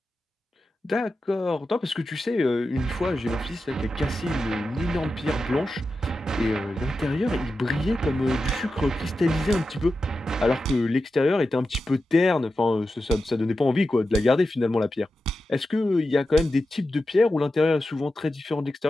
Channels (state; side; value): normal; both; correlation 0.91